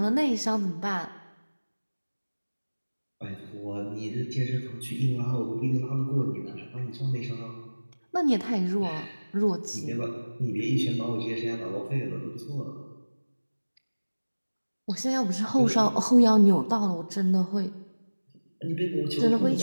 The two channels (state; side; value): inverted; both; correlation -1.00